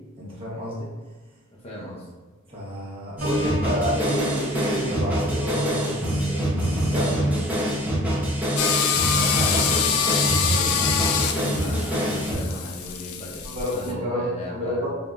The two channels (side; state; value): both; normal; correlation 0.44